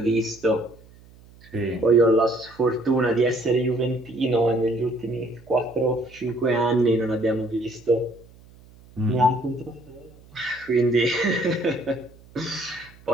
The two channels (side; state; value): right; noise; hum, 24 dB below the sound